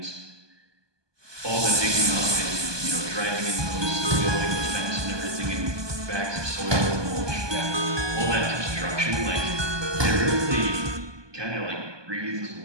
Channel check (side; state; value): left; late; 1.2 ms